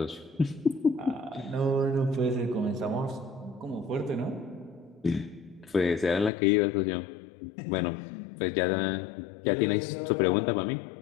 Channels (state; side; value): drops out; right; at 6.3 s